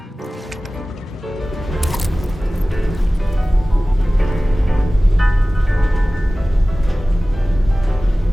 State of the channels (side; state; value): both; normal; correlation 0.97